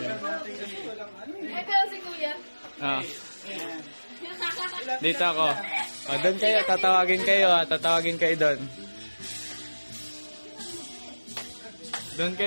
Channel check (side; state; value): both; inverted; correlation -1.00